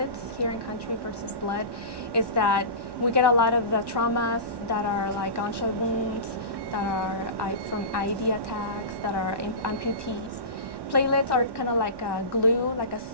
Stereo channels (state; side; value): late; left; 1.1 ms